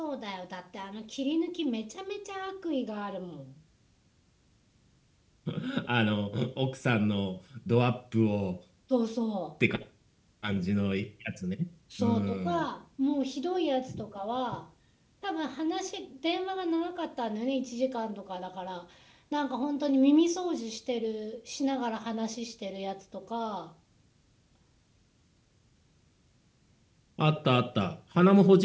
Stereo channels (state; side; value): identical; both; correlation 1.00